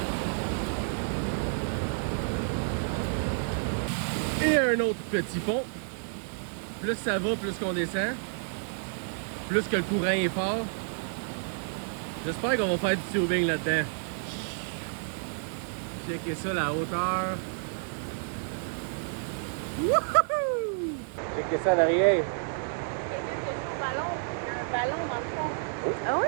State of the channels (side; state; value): left; silent; digital silence